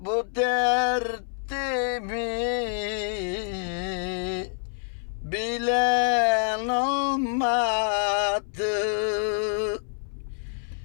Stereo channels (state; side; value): silent; right; 59 dB below the other